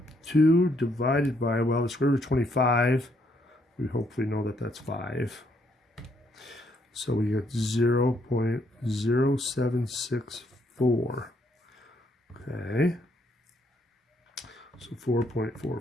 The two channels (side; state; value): both; normal; correlation 0.72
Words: divided by, well, the square root of 25, we hopefully know that that's 5. So we get 0.0764. Okay. So